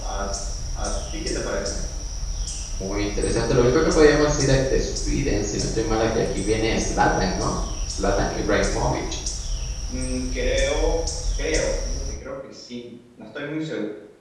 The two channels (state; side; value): identical; both; correlation 1.00